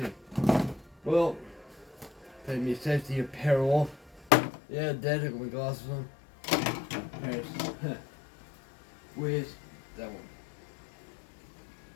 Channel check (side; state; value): right; drops out; at 4.3 s